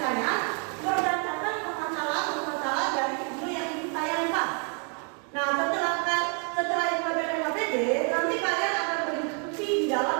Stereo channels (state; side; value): quieter; left; 37.6 dB